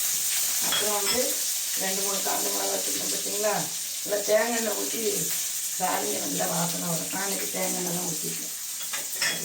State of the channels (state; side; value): identical; both; correlation 1.00